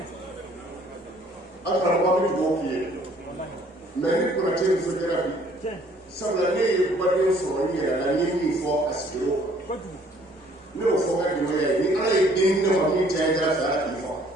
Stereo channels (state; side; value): normal; both; correlation 0.59